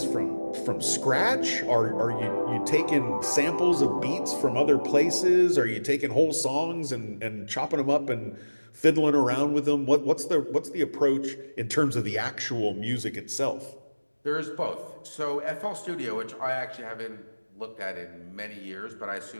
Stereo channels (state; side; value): inverted; both; correlation -1.00